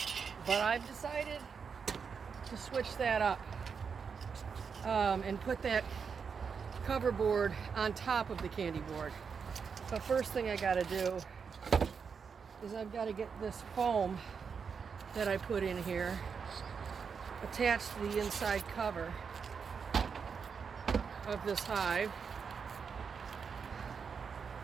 But I've decided to switch that up and put that cover board on top of the candy board. But first thing I gotta do is I've got to get this foam that I put in here attached to the inside cover of this hive.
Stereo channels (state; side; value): quieter; left; 6.0 dB